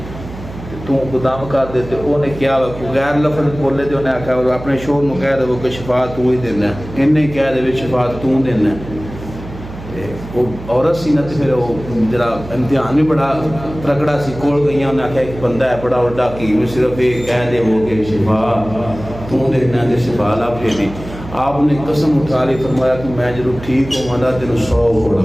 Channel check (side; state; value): right; noise; hum, 13 dB below the sound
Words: تو قدام کر دیتے انہیں کیا غیر لفظ بولے تے انہیں آکھا اپنے شوہر نو کہہ دے وہ کہ شفا تو ہی دینا ہے انہیں کہہ دے شفا تو دینا ہے وہ عورت سی نہ پھر وہ جرا امتحان بھی بڑا ترکڑا سی کول گئی انہیں آکھا ایک بندہ ہے بڑا وڈا کی صرف یہ کہہ دے وہ کہ شفا تو دینا ہے شفا لا پھیری آپ نے قسم اٹھا لی فرمایا کہ میں جب ٹھیک ہوں مانا تینوں 100